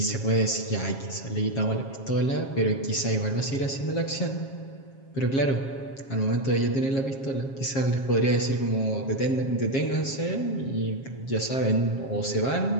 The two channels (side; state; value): right; late; 7.4 ms